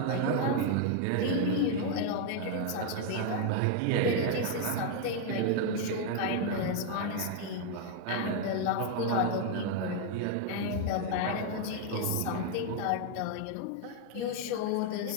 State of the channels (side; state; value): both; different; correlation 0.00